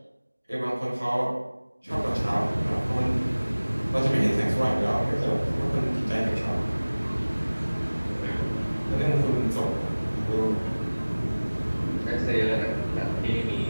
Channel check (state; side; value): inverted; both; correlation -1.00